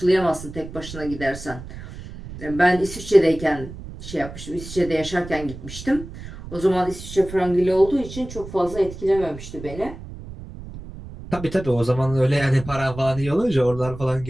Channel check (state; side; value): noise; right; rumble, 13 dB below the sound